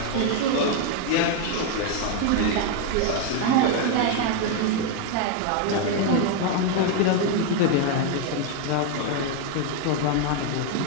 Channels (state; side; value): different; both; correlation 0.01